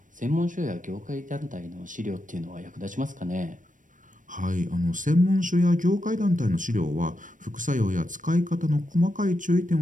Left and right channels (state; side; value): late; left; 0.38 ms